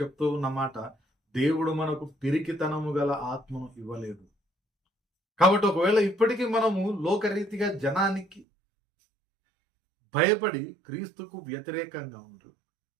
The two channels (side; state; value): left; drops out; at 8.5 s